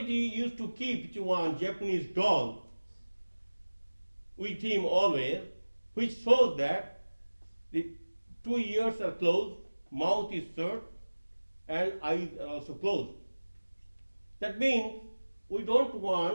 used to keep one Japanese doll with him always, which shows that the 2 ears are closed, mouth is shut, and eyes are also closed. That means we don't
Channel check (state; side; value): inverted; both; correlation -1.00